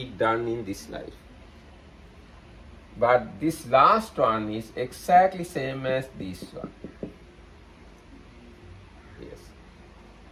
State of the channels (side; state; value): both; identical; correlation 1.00